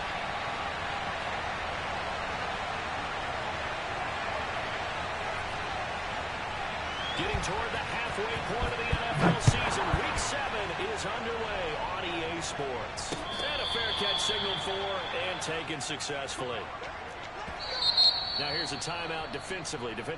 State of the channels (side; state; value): both; identical; correlation 1.00